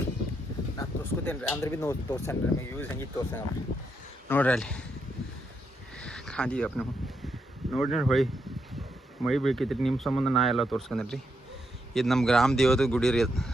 ನಾನು ತೋರಿಸ್ಕೊತೇನೆ ರೀ ಅಂದ್ರೆ ಭೀ ತೋರ್ಸೇನೆ ರೀ ನಿಮಗೆ ಯೂಸ್ ಹೆಂಗಿತ್ತು ತೋರ್ಸೇನೆ ನೋಡ್ರಿ ಅಲ್ಲಿ ಖಾದಿಯಪ್ಪ ನೀವು ನೋಡಿ ಹೊಳಿ ಮೈ ಬೀಳ್ಕೈತ್ರಿ ನಿಮ್ಮ ಸಂಬಂಧ ನಾ ಎಲ್ಲ ತೋರ್ಸ್ಕೊಂಡ್ರಿ ಇದು ನಮ್ಮ ಗ್ರಾಮ ದೇವದ ಗುಡಿ ರೀ ಅದು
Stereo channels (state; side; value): normal; both; correlation 0.80